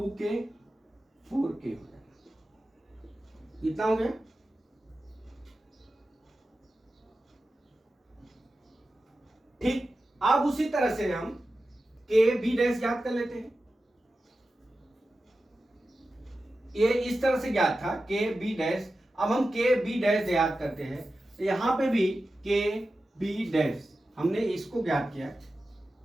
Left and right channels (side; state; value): both; normal; correlation 0.93